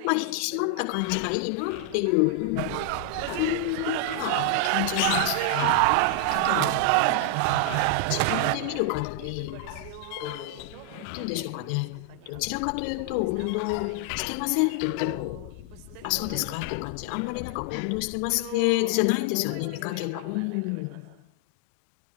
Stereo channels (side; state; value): both; different; correlation 0.00